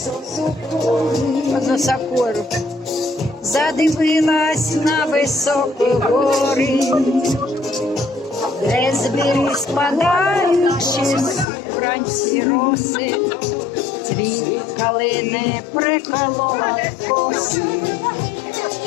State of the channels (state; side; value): drops out; right; at 11.5 s